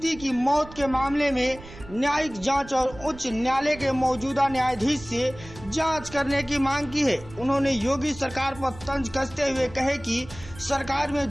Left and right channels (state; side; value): noise; right; rumble, 17 dB below the sound